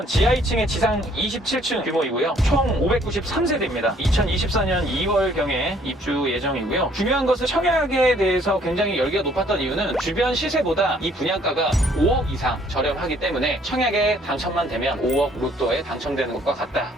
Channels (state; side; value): normal; both; correlation 0.61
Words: 지하 2층에 지상 27층 규모이고요. 총 593세대입니다. 2024년 2월경에 입주 예정이고요. 중요한 것은 청약에 대해서 굉장히 열기가 높았던 이유는 주변 시세보다 이 분양가가 5억 이상 저렴하기 때문에 청약에 당첨만 되면 5억 로또에 당첨되는 것과 같다.